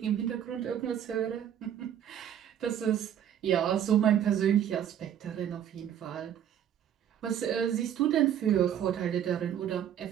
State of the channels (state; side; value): quieter; left; 9.9 dB